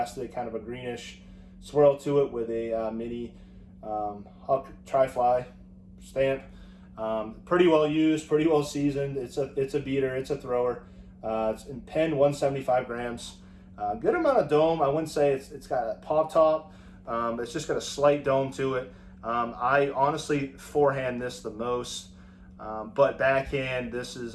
kind of a greenish swirl to it with a mini Huck Tri-Fly stamp. Pretty well used, pretty well seasoned. It's a beater, it's a thrower. It's in pen 175 grams. Good amount of dome. I wouldn't say it's got a pop top. It's just got a slight dome to it. I honestly forehand this the most, but backhand this is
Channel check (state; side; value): identical; both; correlation 1.00